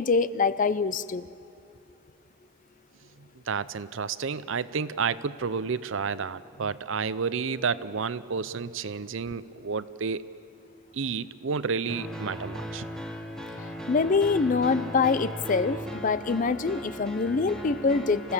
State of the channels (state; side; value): normal; both; correlation 0.07